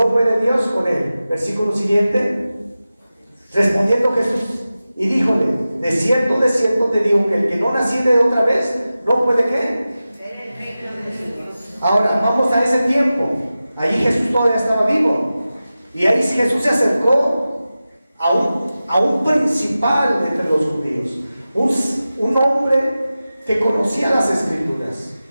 puede Dios con él. Versículo siguiente. Respondiendo Jesús y díjole: de cierto te digo que el que no naciere de otra vez no puede ¿qué? Ahora vamos a ese tiempo. Ahí Jesús todavía estaba vivo, y ahí Jesús se acercó a un principal entre los judíos, un hombre que conocía las Escrituras.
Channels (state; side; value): inverted; both; correlation -0.95